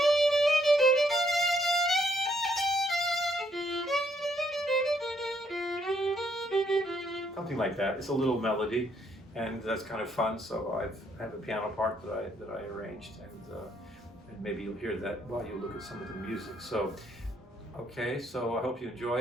something like that. It's a little melody, and that's kind of fun. So I have a piano part that I arranged, and maybe you'll hear that while you look at some of the music. So, okay, so I hope you enjoy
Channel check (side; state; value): both; normal; correlation 0.71